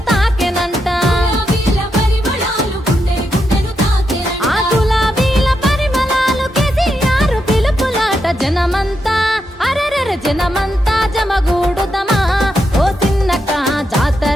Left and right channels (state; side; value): normal; both; correlation 0.84